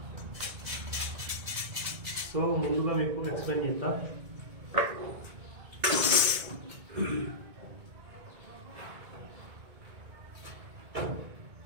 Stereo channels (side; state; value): left; late; 2.2 ms